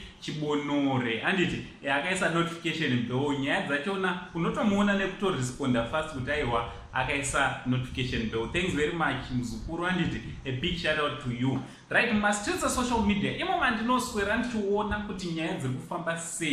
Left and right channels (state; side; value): identical; both; correlation 1.00